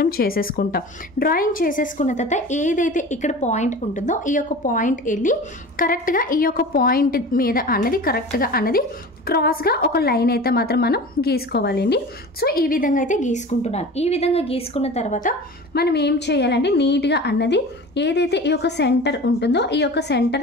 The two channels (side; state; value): both; normal; correlation 0.36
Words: చేసేసుకుంటాం. డ్రాయింగ్ చేసేసుకున్న తర్వాత ఏదైతే ఇక్కడ పాయింట్ ఉంటుందో ఈ యొక్క పాయింట్ వెళ్ళి కరెక్ట్గా ఈ యొక్క పాయింట్ మీద అన్నది కరెక్ట్గా అన్నది క్రాస్గా ఒక లైన్ అయితే మాత్రం మనం గీసుకోవాలండి. సో ఈ విధంగా అయితే గీసుకుంటున్నాను. ఈ విధంగా గీసుకున్న తర్వాత మనం ఏం చేయాలంటే నీట్గా అన్నది ఏదైతే ఈ యొక్క సెంటర్ ఉంటుందో ఈ యొక్క